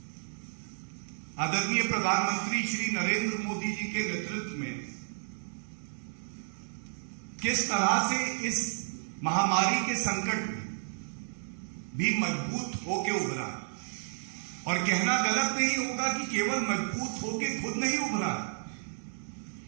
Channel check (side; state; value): left; silent; digital silence